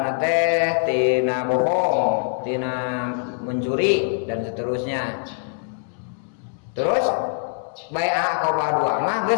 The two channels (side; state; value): right; silent; 63 dB below the other